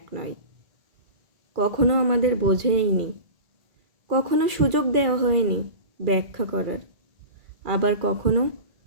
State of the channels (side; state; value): left; late; 2.3 ms